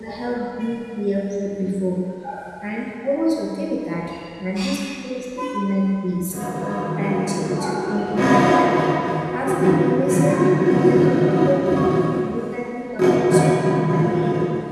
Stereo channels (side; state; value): both; identical; correlation 1.00